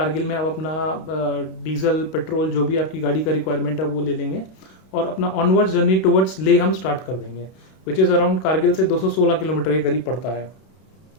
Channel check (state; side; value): late; right; 31 ms